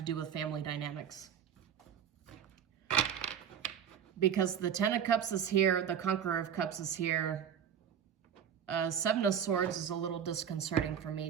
do with family dynamics. Because the Ten of Cups is here, the Conqueror of Cups is here. Seven of Swords is a little disconcerting for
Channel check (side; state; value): left; quieter; 8.6 dB